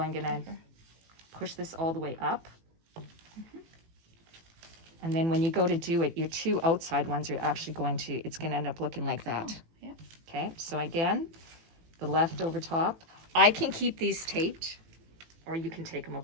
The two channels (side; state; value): left; late; 18 ms